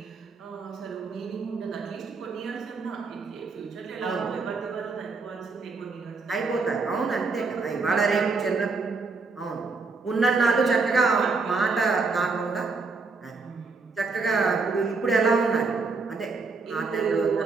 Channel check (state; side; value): quieter; left; 4.2 dB